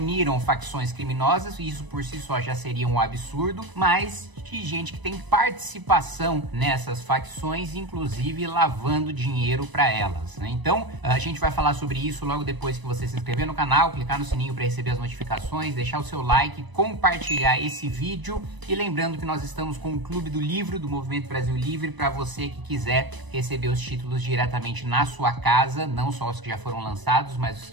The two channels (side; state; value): left; late; 1.0 ms